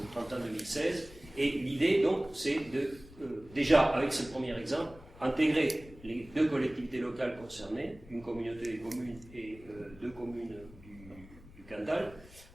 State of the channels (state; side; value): noise; left; rumble, 20 dB below the sound